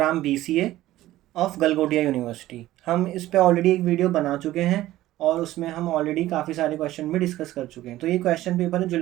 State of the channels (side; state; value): left; quieter; 15.3 dB